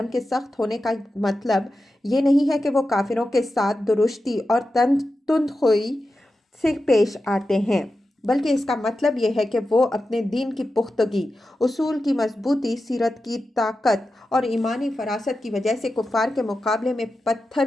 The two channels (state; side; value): normal; both; correlation 0.91